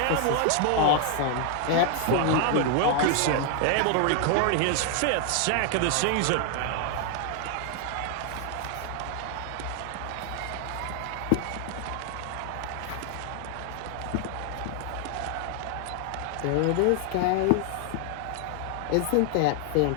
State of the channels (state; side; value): different; both; correlation 0.00